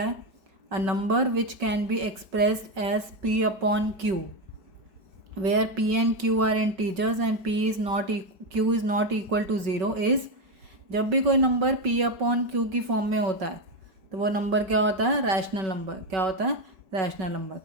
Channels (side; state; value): left; late; 5.3 ms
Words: a number which can be expressed as p upon q where p and q are integers and q is not equal to 0 is, जब भी कोई नंबर p अपॉन q की फॉर्म में होता है तो वो नंबर क्या होता है, रैशनल नंबर। क्या होता है, रैशनल नंबर।